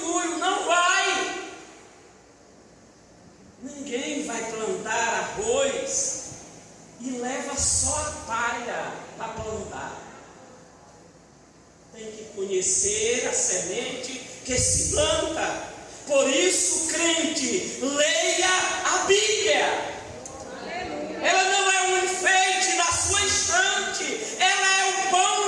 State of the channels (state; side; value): identical; both; correlation 1.00